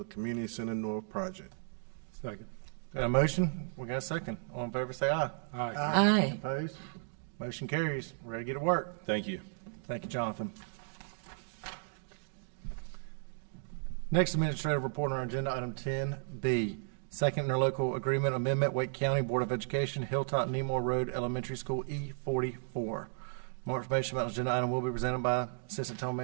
Community Center North project. Second. Got a motion? We got a second. All in favor, say aye. Aye. Aye. Opposed? Motion carries. We're ready to get to work. Thank you. Thank you, Jonathan. Next administrative report on our agenda, item 10B, second interlocal agreement amendment, Wake County Board of Education, Hilltop Nemore Road Elementary School, E44. More information about the agenda item will be presented by Assistant Town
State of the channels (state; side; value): silent; left; digital silence